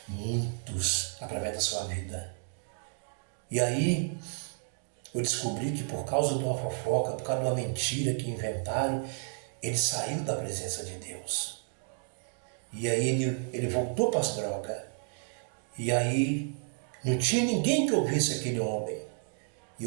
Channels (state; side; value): silent; left; 57 dB below the other